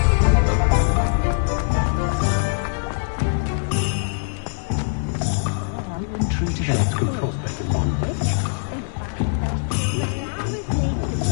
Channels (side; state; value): right; silent; digital silence